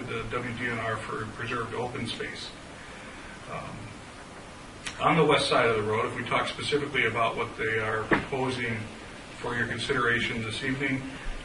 the WDNR for preserved open space. On the west side of the road, if we talk specifically about what they are proposing for your consideration this evening,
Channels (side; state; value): both; identical; correlation 1.00